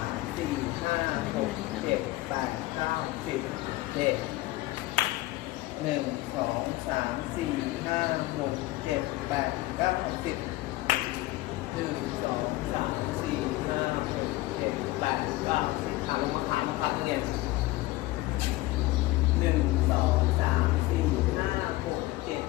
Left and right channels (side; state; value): right; quieter; 18.6 dB